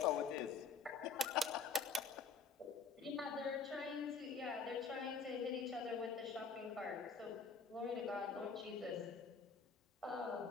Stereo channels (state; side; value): quieter; right; 5.0 dB